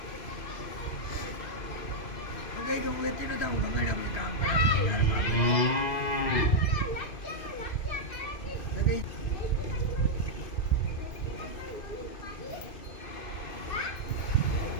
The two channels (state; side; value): late; right; 2.5 ms